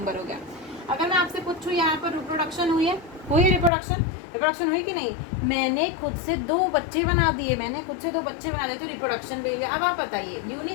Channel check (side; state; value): right; drops out; at 3.7 s